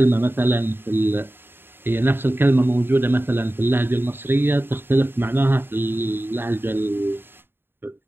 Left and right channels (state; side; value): late; left; 0.10 ms